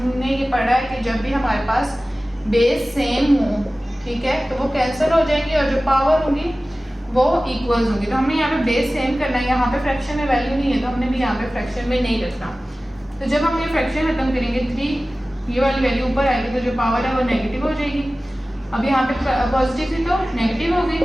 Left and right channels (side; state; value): both; normal; correlation 0.97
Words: ये पढ़ा है कि जब भी हमारे पास बेस सेम हो, ठीक है, तो वो कैंसिल हो जाएंगी और जो पावर होंगी वो इक्वल्स होंगी। तो हमने यहाँ पे बेस सेम करना है, यहाँ पे फ्रैक्शन में वैल्यू नहीं है तो हमने भी यहाँ पे फ्रैक्शन में नहीं रखना। तो जब हम ये फ्रैक्शन खत्म करेंगे, 3 ये वाली वैल्यू ऊपर आएगी तो जो पावर है वो नेगेटिव हो जाएगी। अब यहाँ पे पॉजिटिव थी तो नेगेटिव हो गई।